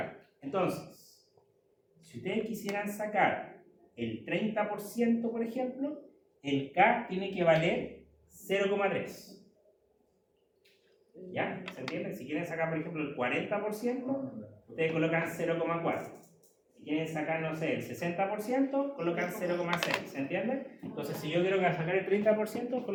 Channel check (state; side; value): identical; both; correlation 1.00